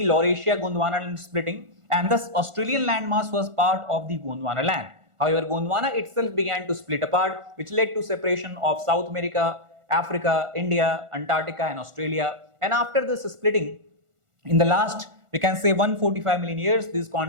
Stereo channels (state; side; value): late; left; 1.4 ms